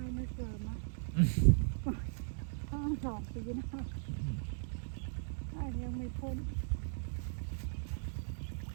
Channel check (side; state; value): left; silent; digital silence